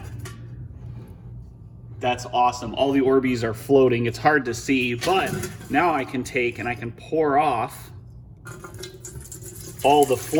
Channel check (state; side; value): identical; both; correlation 1.00